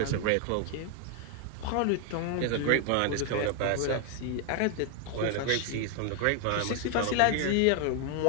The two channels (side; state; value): both; different; correlation 0.00